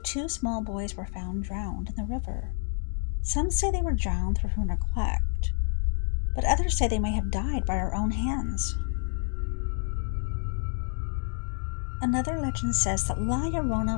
2 small boys were found drowned in the river. Some say they were drowned through her neglect, but others say they may have died by her own hands. Another legend says that La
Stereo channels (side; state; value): right; silent; 59 dB below the other